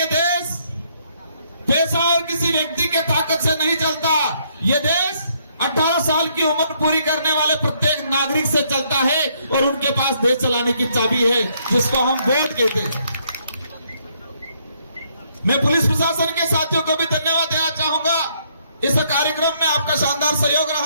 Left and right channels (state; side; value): inverted; both; correlation -0.70